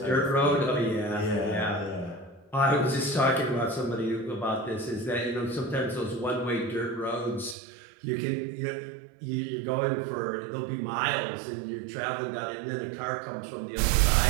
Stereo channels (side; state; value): left; drops out; at 7.6 s